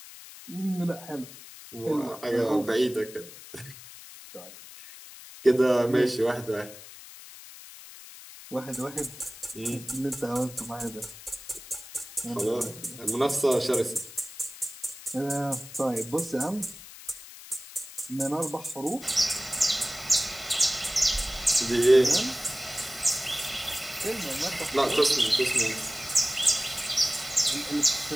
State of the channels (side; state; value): left; noise; hiss, 16 dB below the sound